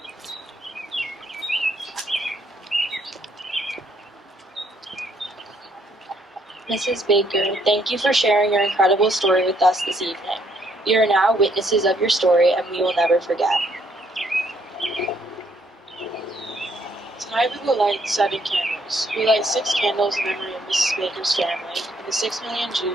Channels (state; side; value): normal; both; correlation 0.69